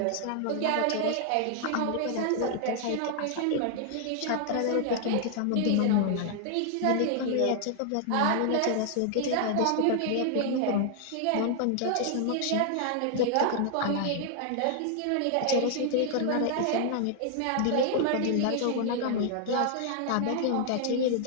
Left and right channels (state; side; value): different; both; correlation 0.00